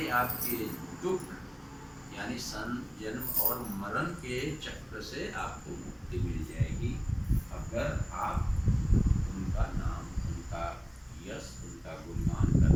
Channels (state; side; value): identical; both; correlation 1.00